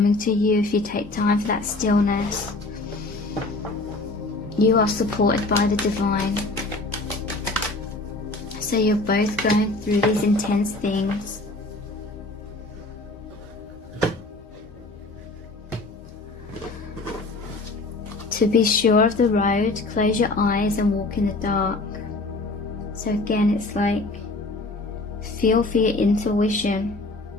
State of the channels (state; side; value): quieter; right; 3.1 dB